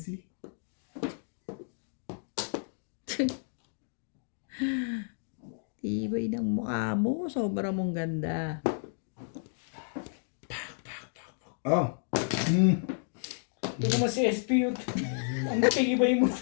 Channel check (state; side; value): silent; right; digital silence